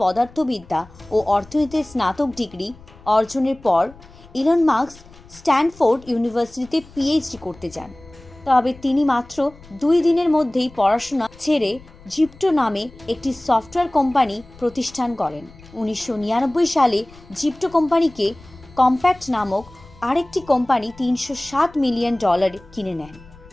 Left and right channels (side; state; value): left; noise; rumble, 23 dB below the sound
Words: পদার্থবিদ্যা ও অর্থনীতির স্নাতক ডিগ্রি অর্জনের পর ইলন মাস্ক স্ট্যানফোর্ড ইউনিভার্সিটিতে পিএইচডি করতে যান। তবে তিনি মাত্র 2 দিনের মধ্যেই পড়াশোনা ছেড়ে জিপ্টো নামে একটি সফটওয়্যার কোম্পানি প্রতিষ্ঠান করেন। 1999 সালে জিপ্টো কোম্পানিকে কম্প্যাক্ট নামক আরেকটি কোম্পানি $307 মিলিয়ন কিনে নেন।